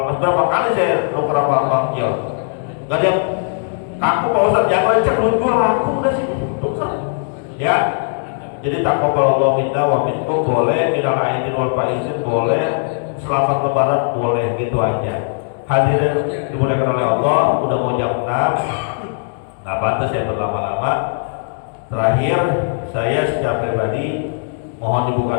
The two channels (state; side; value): silent; right; digital silence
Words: masjid. Berapa kali saya nuker sama Bang Jel, nggak ada yang kaku Pak Ustaz, yang lecek duit gue laku udah sih tuker. Ya, jadi taqabbalallahu minna wa minkum boleh, minal aidin wal faizin boleh, selamat lebaran boleh, gitu aja. Hadirin dimuliakan oleh Allah, udah mau jam 6, nggak pantas saya berlama-lama. Terakhir, saya secara pribadi mohon